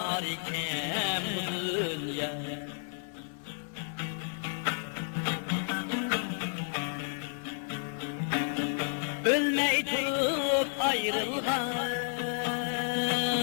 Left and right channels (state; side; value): silent; right; digital silence